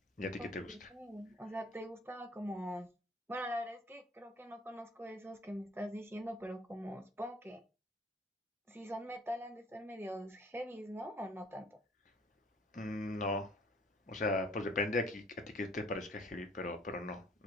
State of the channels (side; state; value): both; normal; correlation 0.57